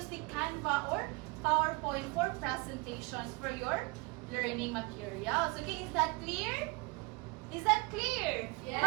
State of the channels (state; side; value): quieter; left; 27.3 dB